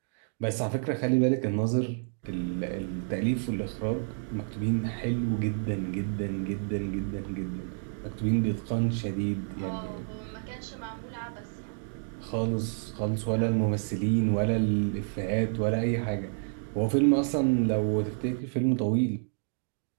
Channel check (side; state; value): left; silent; digital silence